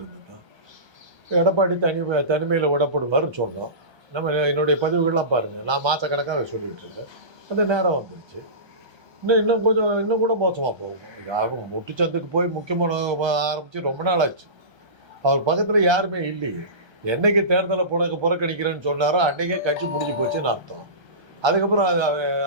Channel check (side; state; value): left; late; 1.3 ms